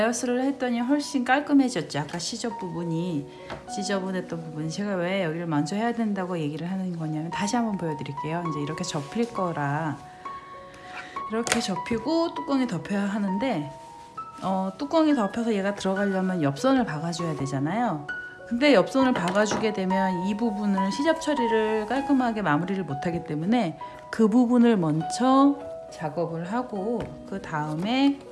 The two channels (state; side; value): identical; both; correlation 1.00